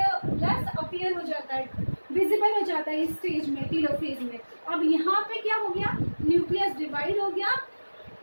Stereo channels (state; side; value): inverted; both; correlation -1.00